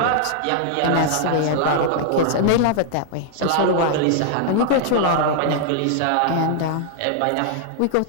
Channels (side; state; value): both; different; correlation -0.01